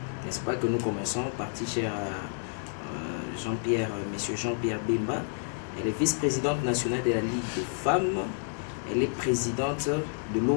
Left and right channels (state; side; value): silent; right; digital silence